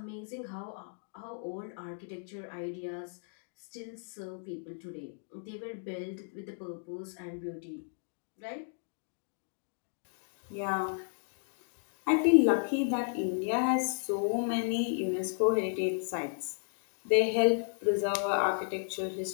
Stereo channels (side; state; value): right; silent; digital silence